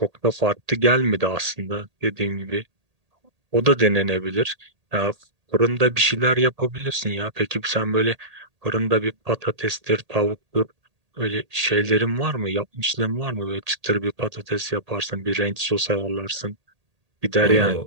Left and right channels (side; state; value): left; late; 1.8 ms